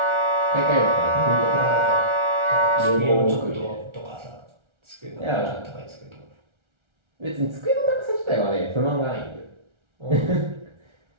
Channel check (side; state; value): left; late; 1.3 ms